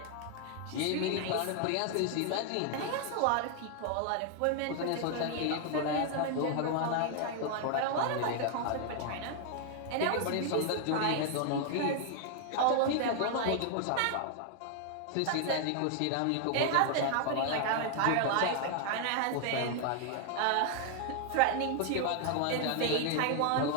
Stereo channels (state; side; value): different; both; correlation 0.00